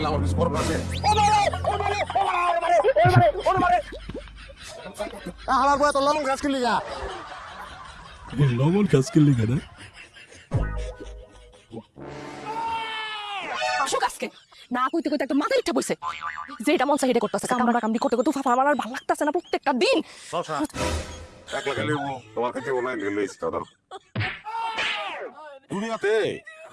আমার কিছু করবো আছে আমার বয় তো লবণ গাছ কিনলি গা লবণ কাজ করলি কেন আসো কাজকে না কইতে কইতে একটা মাথা ইচ্ছা বইছে যে এটা মন চাই এটা করতেছে কামড়া কামড়ি করতে করতে ফাফা আমার আর ভালো লাগতেছে না প্রত্যেকটা দিন শশা একলা গেলে তোমার কাছে ওনা গেলে ইস্তাদার দুনিয়াতে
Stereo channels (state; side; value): identical; both; correlation 1.00